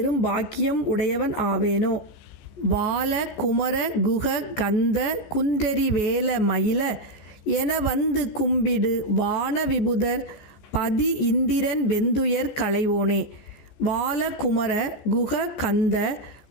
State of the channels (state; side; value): late; right; 14 ms